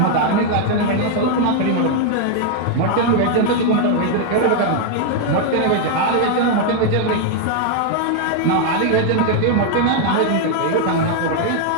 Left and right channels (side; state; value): both; different; correlation 0.00